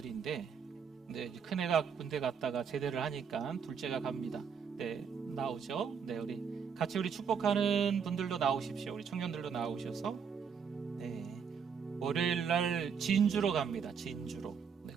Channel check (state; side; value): quieter; left; 6.7 dB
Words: 네, 큰애가 군대 갔다가 제대를 하니까 둘째가 갑니다. 네, 나오죠. 네, 우리 같이 우리 축복하는 분들도 나오십시오. 우리 청년들도 나오셔서 네, 월요일 날 진주로 갑니다. 진주로. 네,